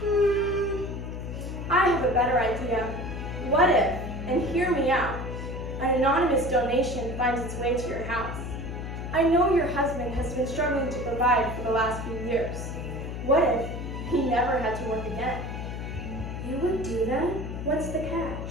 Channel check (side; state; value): left; noise; hum, 6 dB below the sound